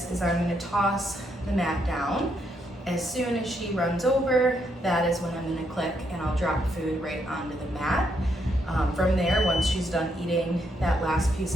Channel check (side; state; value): both; normal; correlation 0.76